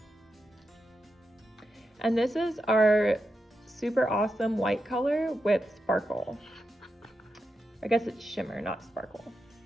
And this is our super awesome white color with sparkle. I guess it's shimmer, not sparkle,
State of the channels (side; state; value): both; normal; correlation 0.88